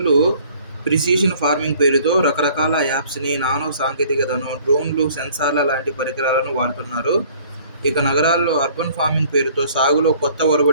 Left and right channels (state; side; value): inverted; both; correlation -0.55